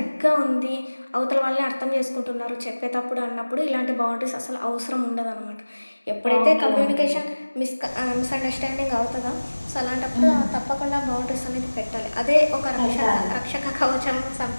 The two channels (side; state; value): both; inverted; correlation -1.00